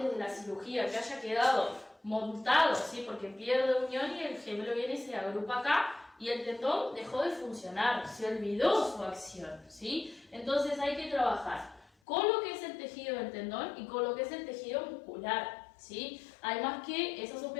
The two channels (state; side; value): drops out; right; at 11.9 s